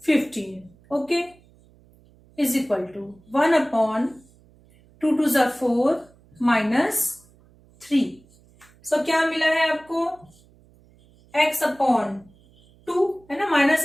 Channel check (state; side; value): noise; right; hum, 29 dB below the sound